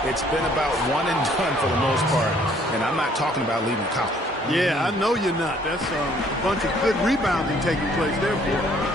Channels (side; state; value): both; normal; correlation 0.61